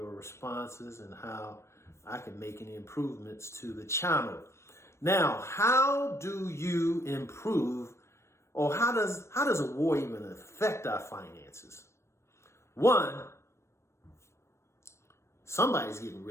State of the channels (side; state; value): right; late; 0.13 ms